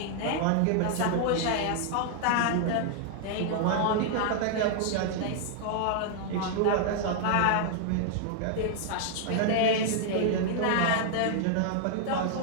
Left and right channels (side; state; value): both; different; correlation -0.01